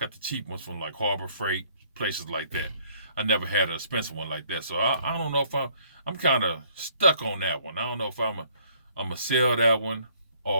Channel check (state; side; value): inverted; both; correlation -0.62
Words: the cheap ones from like Harbor Freight, places like that. I never had an expensive one like that. So I don't know if I'm kind of stuck on that one. I don't know if I'm going to sell that one